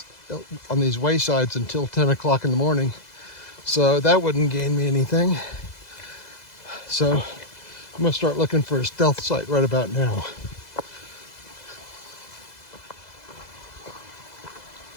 until 10 o'clock in the morning. So that wouldn't gain me anything. So I'm gonna start looking for a stealth site right about now.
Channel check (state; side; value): late; right; 2.0 ms